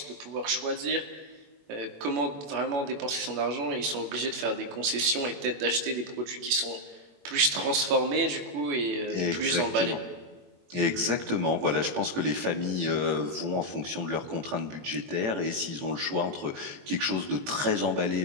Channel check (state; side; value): late; left; 21 ms